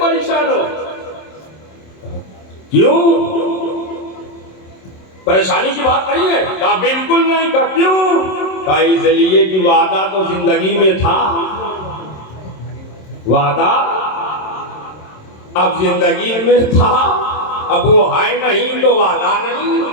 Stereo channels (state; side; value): late; right; 27 ms